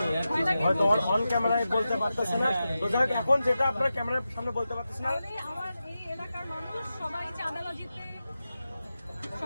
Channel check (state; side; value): inverted; both; correlation -0.92